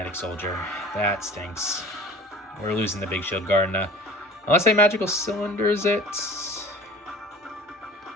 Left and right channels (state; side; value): normal; both; correlation 0.42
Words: Soldier. That stinks. We're losing the Big Shield Gardener. Unless I Magical Cylinders it.